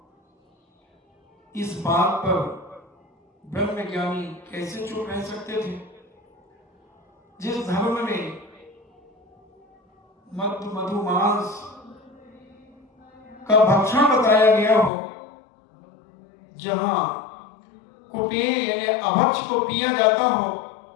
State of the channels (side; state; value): right; drops out; at 14.9 s